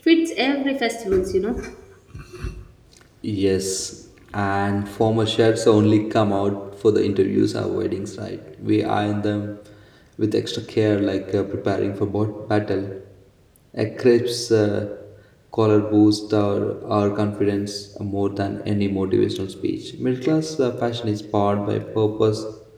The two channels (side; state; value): both; identical; correlation 1.00